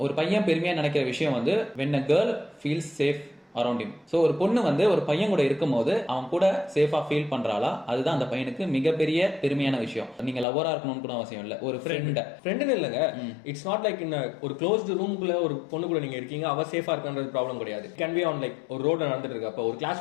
ஒரு பையன் பெருமையா நினைக்கிற விஷயம் வந்து when a girl feels safe around him. So ஒரு பொண்ணு வந்து ஒரு பையன் கூட இருக்கும் போது அவன் கூட சேஃபா ஃபீல் பண்றாளா, அதுதான் அந்த பையனுக்கு மிகப்பெரிய பெருமையான விஷயம். நீங்க லவ்வரா இருக்கணும்னு கூட அவசியம் இல்ல, ஒரு ஃப்ரெண்ட் இல்லங்க. இட்ஸ் நாட் லைக் இன் ஒரு க்ளோஸ்டு ரூமுக்குள்ள ஒரு பொண்ணு கூட நீங்க இருக்கீங்க, அவ சேஃபா இருக்கான்றது ப்ராப்ளம் கிடையாது. கேன் பி ஆன் லைக் ஒரு ரோட்ல நடந்துட்டு இருக்கு, அப்ப ஒரு கிளாஸ்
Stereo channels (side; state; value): right; drops out; at 10.5 s